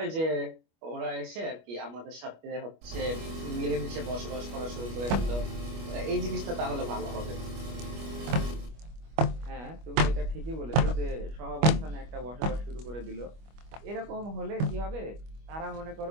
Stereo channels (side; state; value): left; late; 25 ms